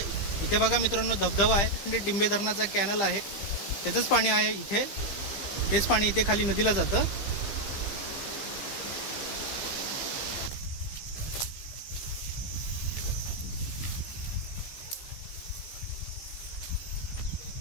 इथे बघा मित्रांनो, धबधबा आहे, डिंबे धरणाचा कॅनल आहे, त्याचंच पाणी आहे इथे। तेच पाणी इथे खाली नदीला जातं।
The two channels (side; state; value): right; late; 15 ms